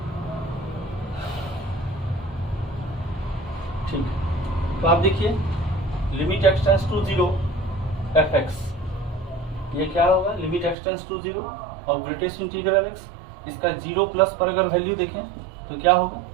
ठीक है। तो आप देखिए limit x tends to 0 fx, ये क्या होगा, लिमिट x टेंड्स टू 0 और ग्रेटेस्ट इंटीग्रल x, इसका 0 प्लस पर अगर वैल्यू देखें तो क्या होगा,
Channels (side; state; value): left; drops out; at 10.8 s